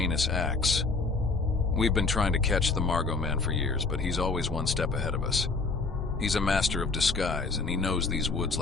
acts? We've been trying to catch the Margo Man for years, but he's always one step ahead of us. He's a master of disguise, and he knows these woods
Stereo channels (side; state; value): right; quieter; 4.0 dB